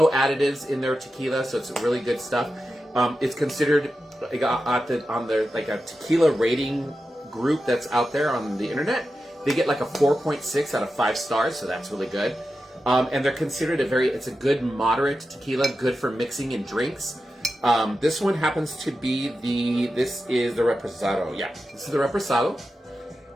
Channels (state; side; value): normal; both; correlation 0.91